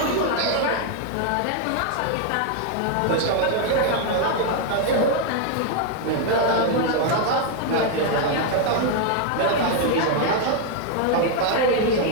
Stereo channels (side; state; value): both; different; correlation 0.00